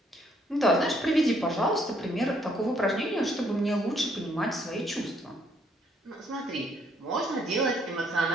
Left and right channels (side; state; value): both; normal; correlation 0.68